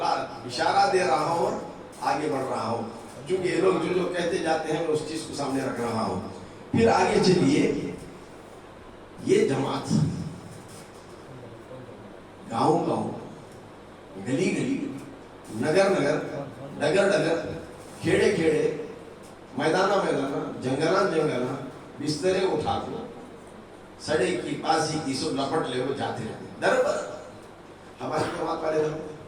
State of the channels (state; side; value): identical; both; correlation 1.00